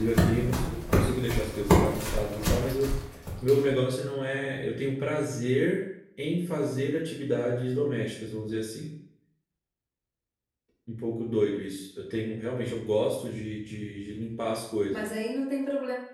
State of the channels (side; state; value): both; identical; correlation 1.00